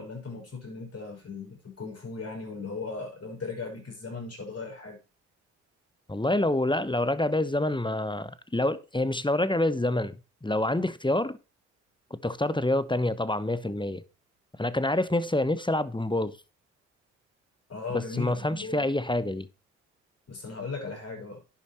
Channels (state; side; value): normal; both; correlation 0.68